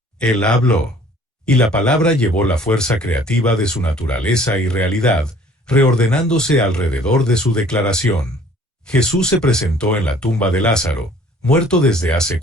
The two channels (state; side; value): normal; both; correlation 0.54